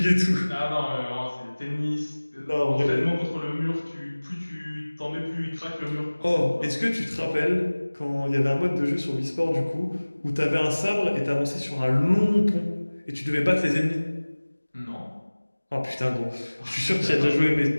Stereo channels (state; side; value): inverted; both; correlation -1.00